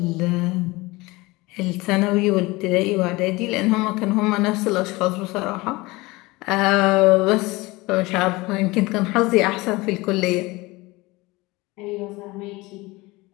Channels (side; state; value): right; quieter; 22.1 dB